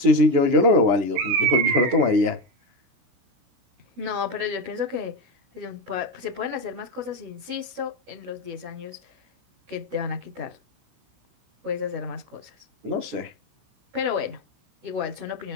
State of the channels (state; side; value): late; left; 16 ms